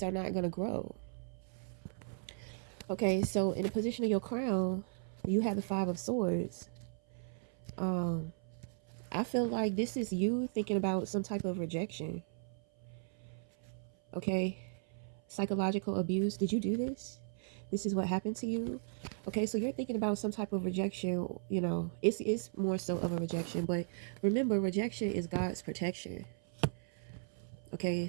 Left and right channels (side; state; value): left; silent; 53 dB below the other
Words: are not going to grow. Okay, so in the position of your crown, you have the Five of Swords. um I feel like this is you thinking about some type of rejection. Okay, psychological abuse. Did you do this? This is what happened to you. Okay, so you're thinking about some type of rejection. It's more so of a rejection, but remember, rejection is God's protection. Okay,